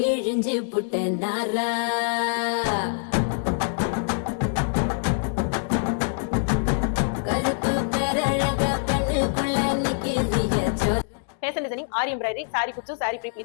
புட்ட நாரா கருப்பு பேரழக கண்ணுக்குள்ள நிக்கிறிய ஜோரா. Fashion designing, Aari embroidery, sari kuchu, sari pre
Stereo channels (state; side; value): silent; right; digital silence